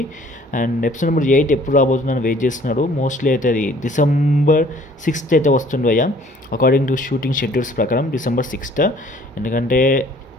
అండ్ ఎపిసోడ్ నెంబర్ 8 ఎప్పుడు రాబోతుందని వెయిట్ చేస్తున్నాడు. మోస్ట్లీ అయితే అది December 6th అయితే వస్తుంది అయ్యా, అకార్డింగ్ టు షూటింగ్ షెడ్యూల్స్ ప్రకారం December 6th. ఎందుకంటే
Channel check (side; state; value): both; normal; correlation 0.56